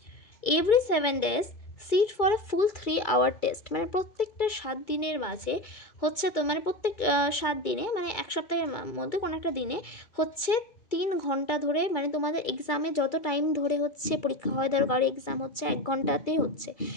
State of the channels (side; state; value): right; late; 2.2 ms